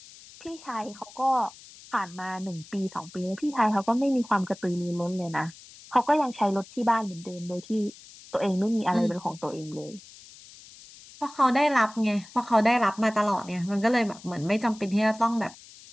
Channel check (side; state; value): left; noise; hiss, 20 dB below the sound